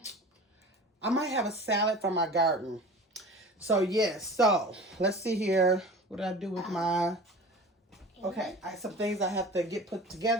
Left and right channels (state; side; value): normal; both; correlation 0.38